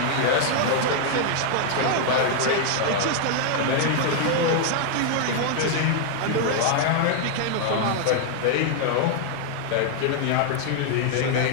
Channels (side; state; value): both; different; correlation 0.00